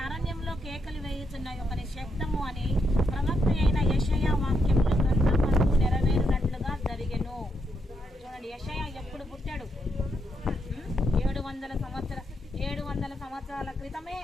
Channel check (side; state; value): both; normal; correlation 0.80